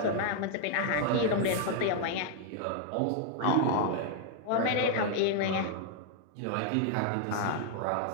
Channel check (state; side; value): different; both; correlation 0.00